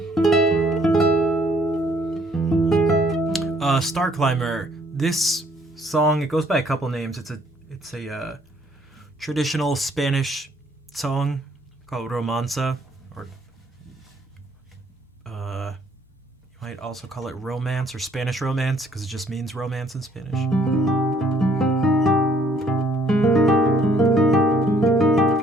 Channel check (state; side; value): normal; both; correlation 0.63